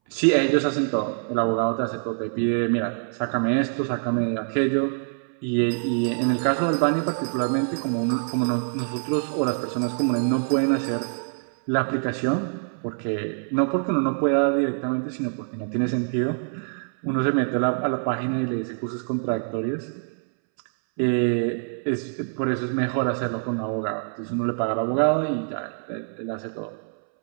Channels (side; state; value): left; silent; 62 dB below the other